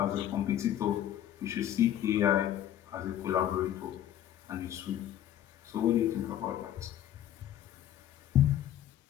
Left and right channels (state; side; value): quieter; right; 11.5 dB